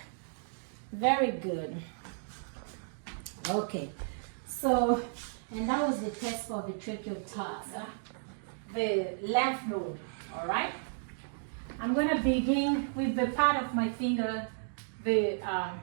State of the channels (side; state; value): left; silent; digital silence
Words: Very good. Okay. So, and that was the test for the trachea tag. The lymph node. All right. I'm going to begin with the part of my finger, the